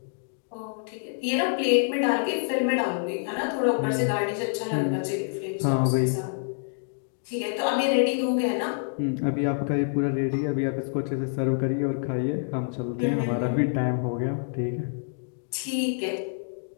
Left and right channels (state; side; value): silent; right; digital silence